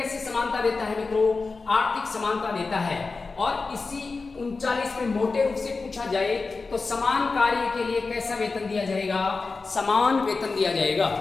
समानता देता है मित्रों? आर्थिक समानता देता है। और इसी 39 में मोटे रूप से पूछा जाए तो समान कार्य के लिए कैसा वेतन दिया जाएगा? समान वेतन दिया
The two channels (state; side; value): quieter; right; 4.1 dB